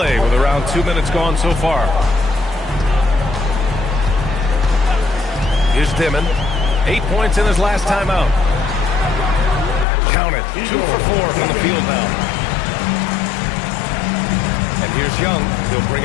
with around 2 minutes gone so far. Here's Dimon. 8 points in his last time out. Count it. 2 for 4 from the field now. And here's Young. He'll bring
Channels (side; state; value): right; drops out; at 9.9 s